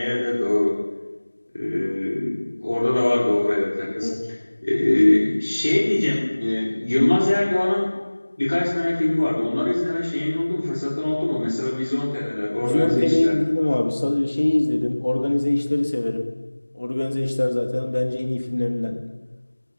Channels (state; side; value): inverted; both; correlation -1.00